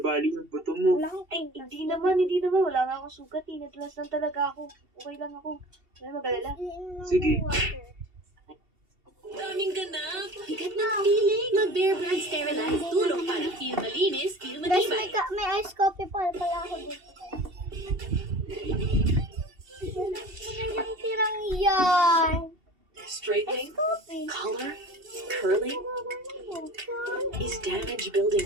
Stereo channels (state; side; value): late; left; 2.7 ms